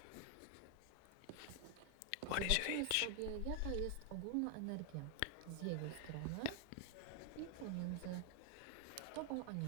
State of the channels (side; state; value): both; different; correlation 0.00